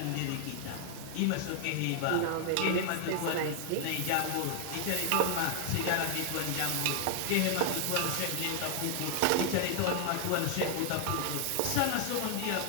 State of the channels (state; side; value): different; both; correlation 0.00